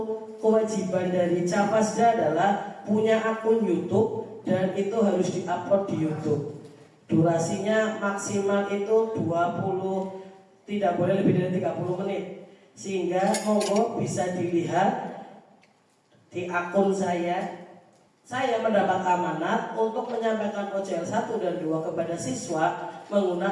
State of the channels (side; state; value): both; identical; correlation 1.00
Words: kewajiban dari Cafasda adalah punya akun YouTube dan itu harus diupload di YouTube. Durasinya maksimal itu 20, tidak boleh lebih dari 30 menit. Sehingga monggo bisa dilihat di akun saya. Saya mendapat amanat untuk menyampaikan OJL 1 dan 2 kepada siswa